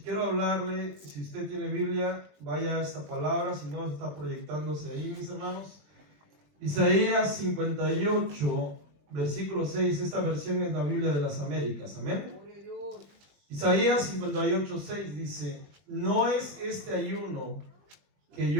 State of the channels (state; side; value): late; left; 20 ms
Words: hablarle, si usted tiene Biblia, vaya a esta palabra, si no está proyectándose ahí, mis hermanos. Isaías 58, versículo 6, esta versión es la Biblia de las Américas. Amén. Isaías 58, 6 dice: ¿no es este ayuno que